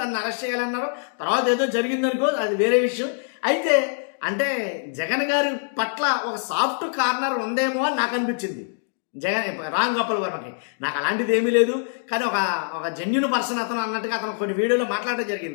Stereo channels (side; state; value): right; silent; digital silence